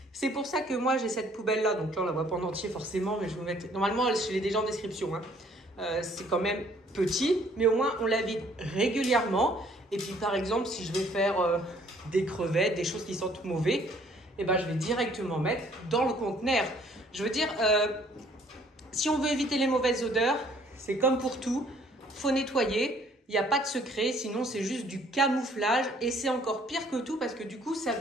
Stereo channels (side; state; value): both; normal; correlation 0.60